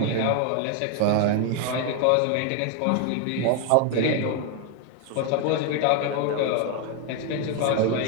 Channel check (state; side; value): different; both; correlation 0.01